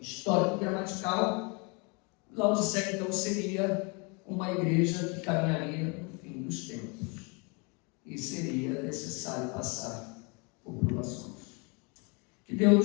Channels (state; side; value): quieter; right; 31.9 dB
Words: histórico-gramatical, Laodiceia então seria uma igreja que caminharia no fim dos tempos e seria necessário passar por provações. Que